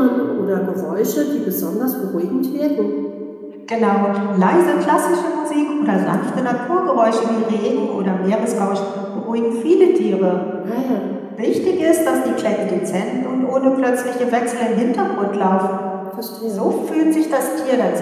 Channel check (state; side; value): identical; both; correlation 1.00